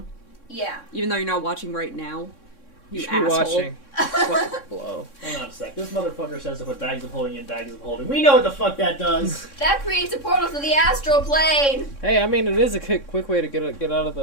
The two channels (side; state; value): right; late; 3.6 ms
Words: Yeah. Even though you're not watching right now. You should be asshole. watching. Blow. Hang on a sec. This motherfucker says to put bags of holding in bags of holding. We know what the fuck that does. That creates a portal to the astral plane. Hey, I mean, it is a quick way to get out of the